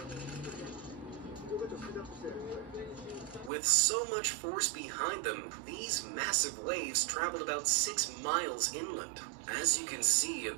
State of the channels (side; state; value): left; drops out; at 3.5 s